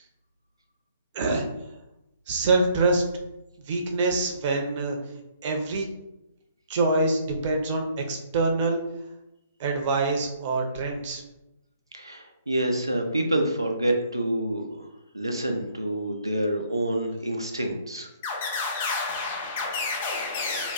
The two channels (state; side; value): inverted; both; correlation -0.64